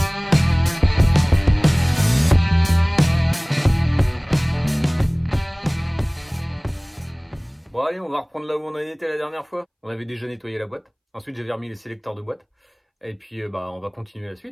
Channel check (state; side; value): identical; both; correlation 1.00